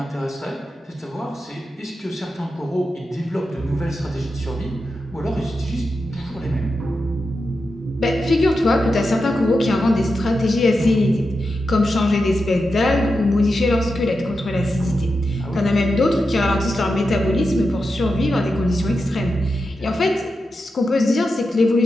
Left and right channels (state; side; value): normal; both; correlation 0.89